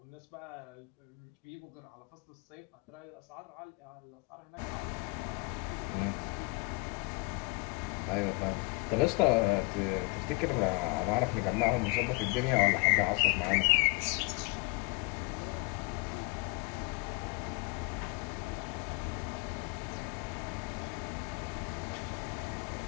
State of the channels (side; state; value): right; quieter; 26.9 dB